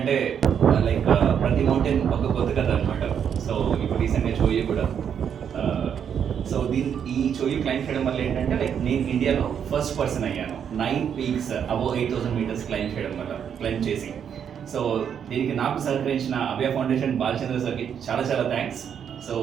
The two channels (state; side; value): quieter; left; 8.1 dB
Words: లైక్ ప్రతి మౌంటైన్ ఒక కొత్త కథ అనమాట. సో ఇప్పుడు రీసెంట్గా చోయు కూడా. సో ఈ చోయు క్లైంబ్ చేయడం వల్ల ఏంటంటే లైక్ నేను ఇండియాలో ఫస్ట్ పర్సన్ అయ్యాను 9 పీక్స్ అబోవ్ 8,000 మీటర్స్ క్లైంబ్ చేసి. సో దీనికి నాకు సహకరించిన అభయ ఫౌండేషన్ బాలచంద్ర సార్కి చాలా చాలా థ్యాంక్స్. సో